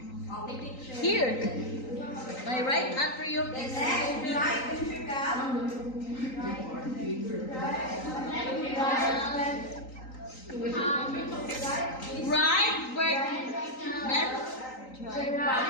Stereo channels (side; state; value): right; late; 3.9 ms